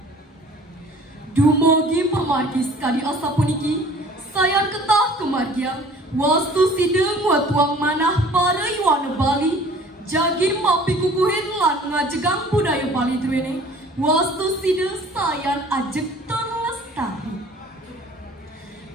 Dumogi pemargi sekali asa puniki, sayan ketah kemargian, wastu sideng watuang manah para iwana Bali, jagi mapi kukuhin lan ngajegang budaya Bali duene, wastu sideng sayan ajek terlestari.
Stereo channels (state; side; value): normal; both; correlation 0.49